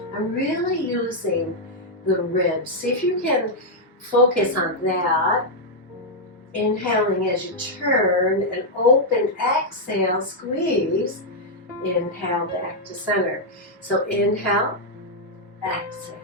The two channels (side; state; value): both; normal; correlation -0.03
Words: I'm really using the ribs. See if you can focus on that. Inhaling as you turn and open, exhale, squeeze. Inhale back to center. So inhale, exhale.